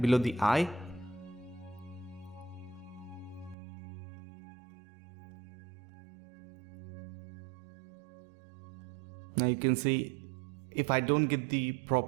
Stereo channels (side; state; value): left; drops out; at 3.6 s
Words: below the eye. Now you can see, if I don't get the